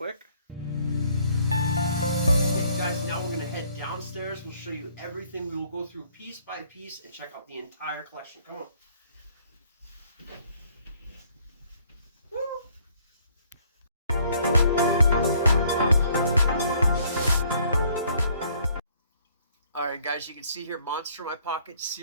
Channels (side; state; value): both; inverted; correlation -0.63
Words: Okay, guys, now we're going to head downstairs and show you everything. We will go through piece by piece and check out the entire collection. Come on. Woo! Alright guys, you can see here Monster in My Pocket